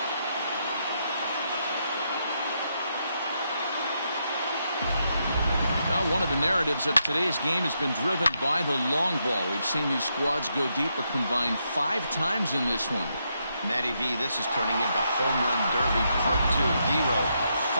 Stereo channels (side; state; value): both; inverted; correlation -0.80